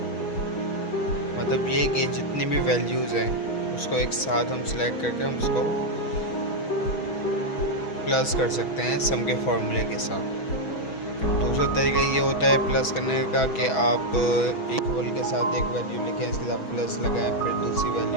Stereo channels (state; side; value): late; right; 6.2 ms